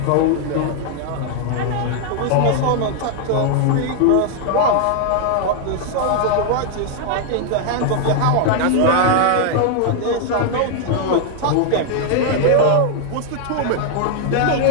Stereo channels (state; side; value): different; both; correlation 0.00